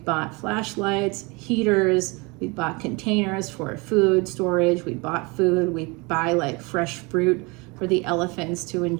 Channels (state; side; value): quieter; left; 27.6 dB